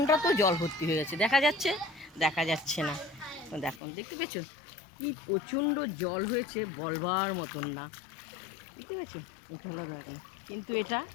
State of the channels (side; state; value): right; drops out; at 3.8 s